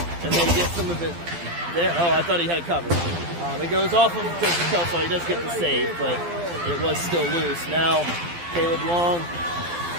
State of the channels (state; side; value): late; left; 12 ms